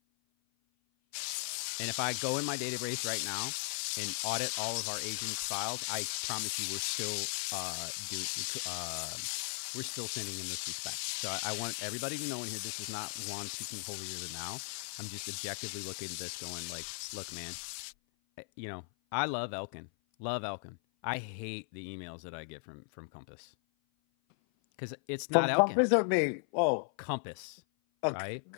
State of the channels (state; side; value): silent; right; 53 dB below the other